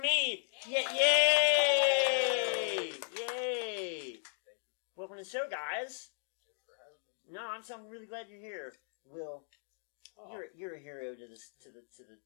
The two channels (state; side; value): silent; right; 54 dB below the other